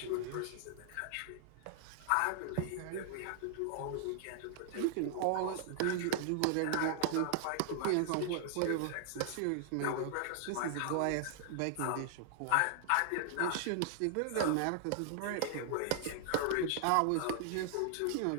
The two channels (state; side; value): different; both; correlation -0.01